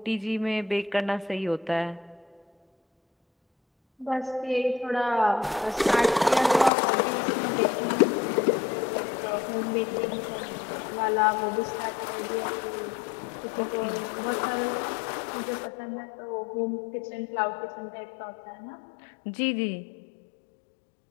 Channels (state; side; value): drops out; right; at 6.7 s